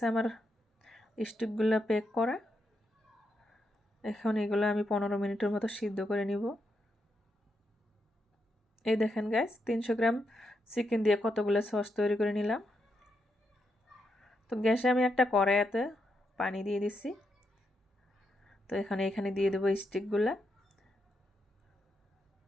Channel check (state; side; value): normal; both; correlation 0.82